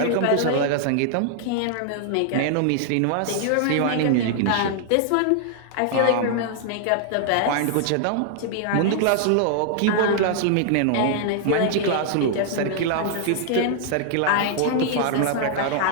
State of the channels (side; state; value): both; different; correlation 0.00